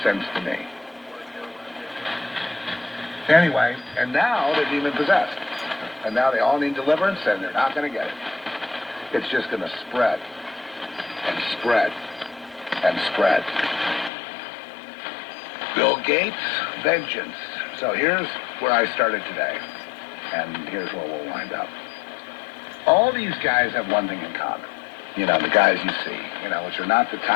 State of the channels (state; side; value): drops out; right; at 14.1 s